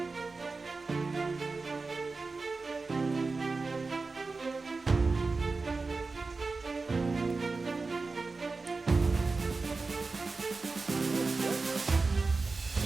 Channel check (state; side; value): quieter; left; 3.9 dB